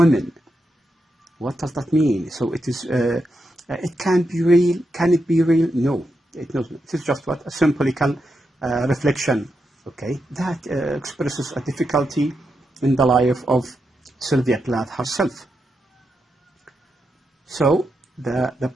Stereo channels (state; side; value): normal; both; correlation 0.85